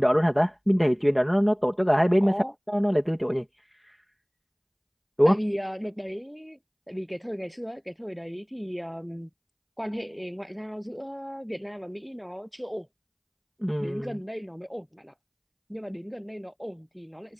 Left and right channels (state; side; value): identical; both; correlation 1.00